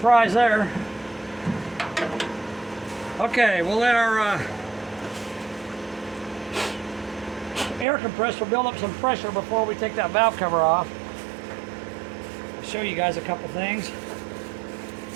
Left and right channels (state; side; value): drops out; left; at 7.9 s